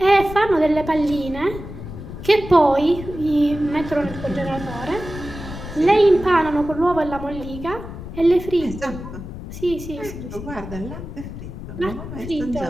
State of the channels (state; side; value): noise; left; rumble, 10 dB below the sound